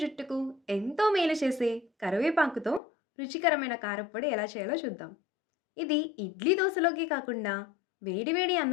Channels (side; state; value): right; drops out; at 2.8 s